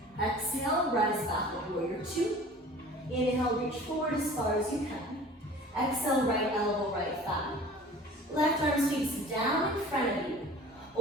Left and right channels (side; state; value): both; normal; correlation 0.44